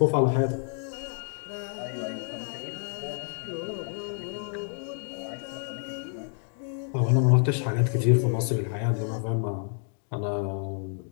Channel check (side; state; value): right; silent; 59 dB below the other